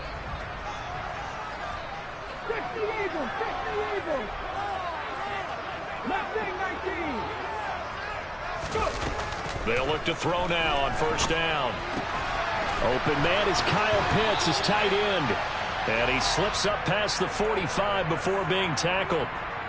50 Eagles. 19. They'll look to throw now on 1st down. Open man is Kyle Pitts, his tight end. And he slips up past the 45 before being tackled.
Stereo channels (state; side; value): identical; both; correlation 1.00